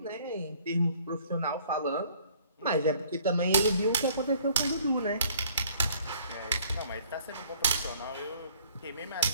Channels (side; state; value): both; inverted; correlation -0.57